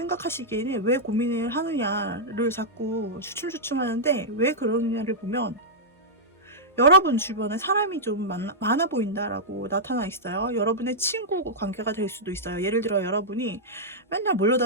왜 고민을 하느냐를 자꾸 주춤주춤 하는데, 왜 그러느냐를 보면 여러분 주변에 사람이 좀 많아 보인다라고 나타나 있어요. 여러분의 친구 관계가 될 수도 있어요. 예를 들어 여러분이 맨날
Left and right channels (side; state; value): both; normal; correlation -0.09